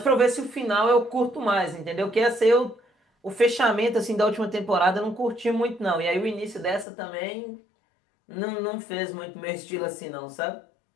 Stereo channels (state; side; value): drops out; right; at 6.9 s